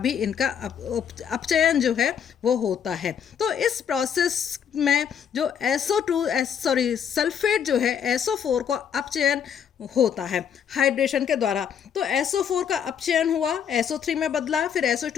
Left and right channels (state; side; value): quieter; right; 8.1 dB